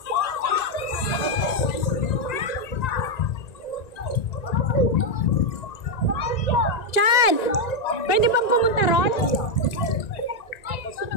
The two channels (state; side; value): late; right; 1.9 ms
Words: Chan! Pwede bang pumunta ron?